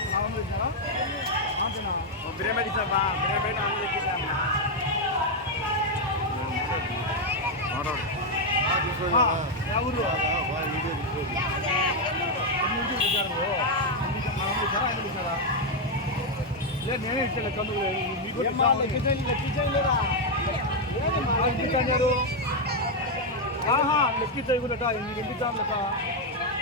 బిర్యానీ ఇచ్చాబా బిర్యానీ ఆమె ఎక్కించామా ఊరు లేదు నేనే ఇచ్చాను కందుకు లెక్కించారు లెక్కించాయి కూడా ఎంపిద్దాం లెక్క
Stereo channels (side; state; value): both; normal; correlation 0.02